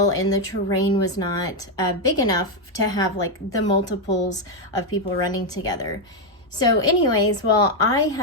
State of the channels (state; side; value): normal; both; correlation 0.03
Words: and the terrain was not big enough to have the multiples of people running together. So anyways, well, I